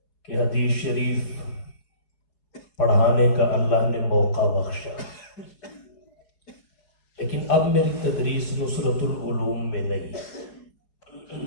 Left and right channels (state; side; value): late; right; 4.7 ms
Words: کہ حدیث شریف پڑھانے کا اللہ نے موقع بخشا، لیکن اب میری تدریس نصرت العلوم میں نہیں۔